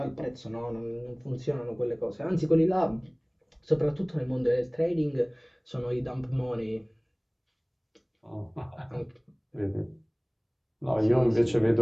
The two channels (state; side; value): identical; both; correlation 1.00